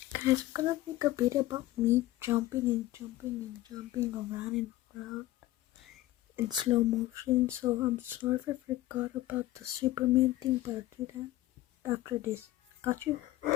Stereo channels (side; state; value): right; quieter; 16.0 dB